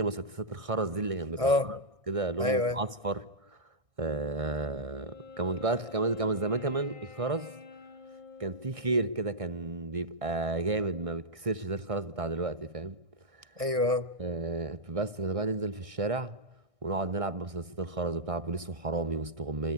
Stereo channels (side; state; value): left; late; 1.6 ms